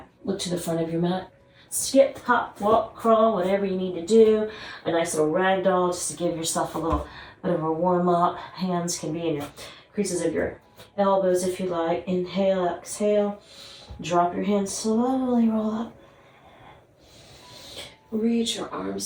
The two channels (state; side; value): identical; both; correlation 1.00